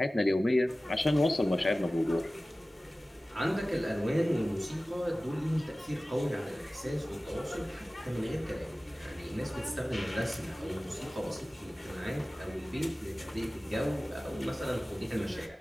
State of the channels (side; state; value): both; normal; correlation 0.97